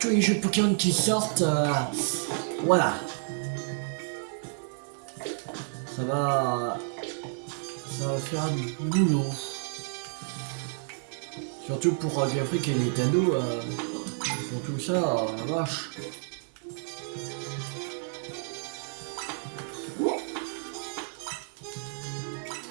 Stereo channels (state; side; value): silent; left; 58 dB below the other